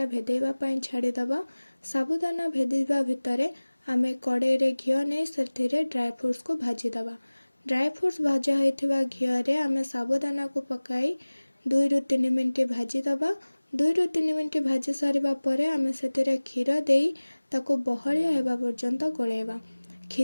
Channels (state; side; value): inverted; both; correlation -1.00